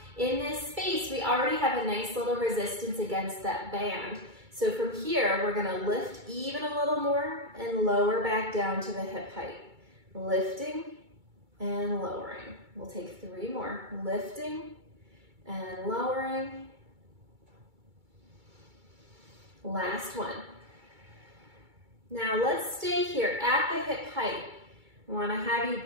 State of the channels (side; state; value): left; late; 2.3 ms